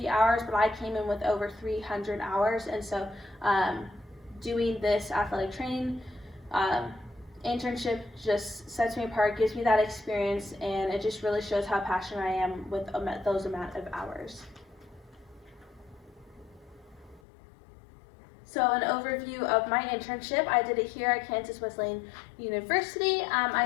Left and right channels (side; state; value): right; drops out; at 17.2 s